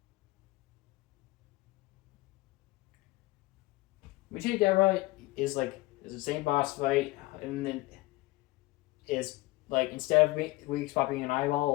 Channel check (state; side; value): quieter; right; 20.6 dB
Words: Michi Dera is the same boss fight, and then is like instead of weak spot being an